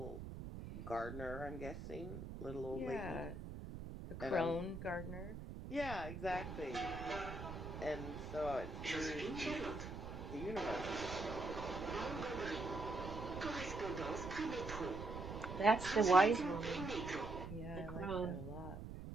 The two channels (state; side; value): noise; right; rumble, 8 dB below the sound